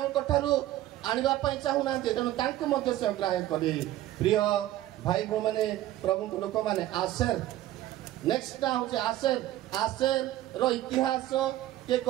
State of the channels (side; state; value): left; quieter; 14.3 dB